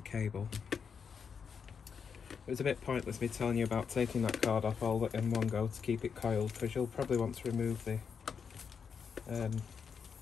cable. It was a bit pointless me telling you about taking that card off all in one go to keep it coiled, because you'll probably want to remove the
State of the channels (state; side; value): quieter; right; 6.4 dB